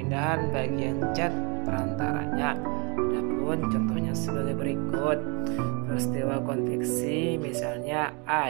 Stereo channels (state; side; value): quieter; left; 32.9 dB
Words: bagian zat perantaranya. Adapun contohnya sebagai berikut. Peristiwa konveksi misalnya